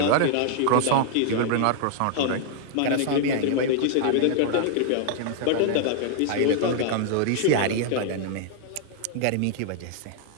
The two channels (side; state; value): both; different; correlation -0.01